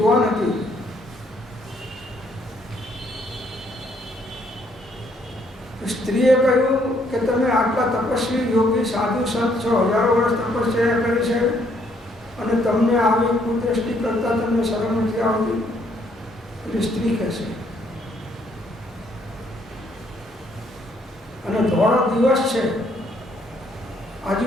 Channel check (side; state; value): both; normal; correlation 0.68